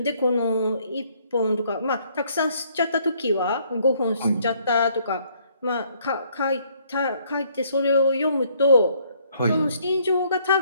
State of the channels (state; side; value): inverted; both; correlation -0.65